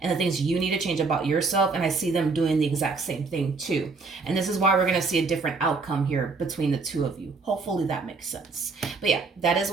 and the things you need to change about yourself. And I see them doing the exact same thing too. And this is why we're going to see a different outcome here between the two of you. Hopefully that makes sense. But yeah, that is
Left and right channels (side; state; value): left; quieter; 4.3 dB